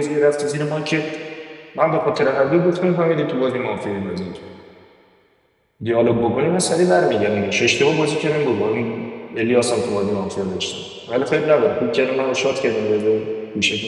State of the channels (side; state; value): both; identical; correlation 1.00